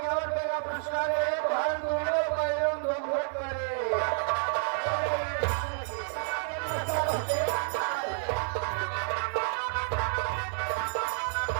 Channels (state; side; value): silent; left; 58 dB below the other